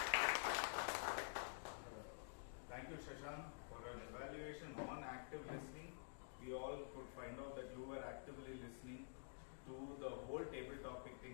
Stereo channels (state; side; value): silent; right; digital silence